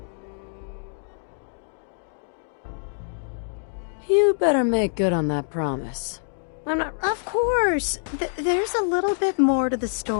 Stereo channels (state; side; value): silent; right; digital silence